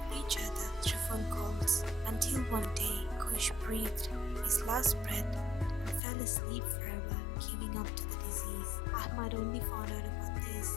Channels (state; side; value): drops out; right; at 6.0 s